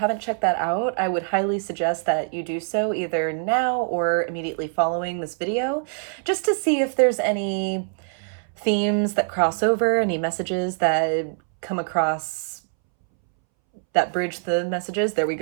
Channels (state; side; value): silent; left; 63 dB below the other